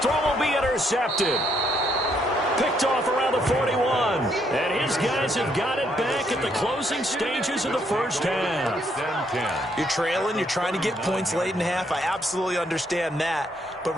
will be intercepted. Picked off around the 41. And his guys have got it back at the closing stages of the first half. You're trailing. You're trying to get points late in the half. I absolutely understand that. But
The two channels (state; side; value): normal; both; correlation 0.72